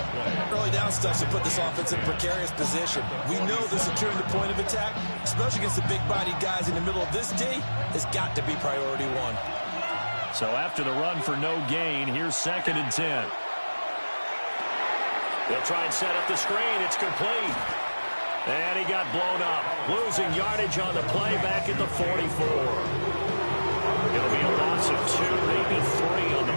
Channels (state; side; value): inverted; both; correlation -1.00